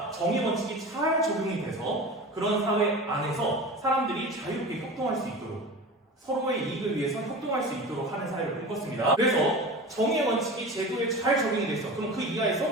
정의 원칙이 잘 적용이 돼서 그런 사회 안에서 사람들이 자유롭게 협동할 수 있도록 서로의 이익을 위해서 협동할 수 있도록 하는 사회를 꿈꿨습니다. 그래서 정의 원칙이 제도에 잘 적용이 됐어. 그럼 그 이하에서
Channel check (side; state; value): both; normal; correlation 0.32